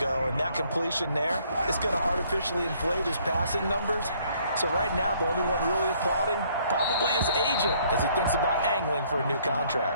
and that completion there is going to artificially inflate his passing numbers. So right now, the only one really applauding probably his agent as he thinks about angling for a new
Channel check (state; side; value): inverted; both; correlation -0.64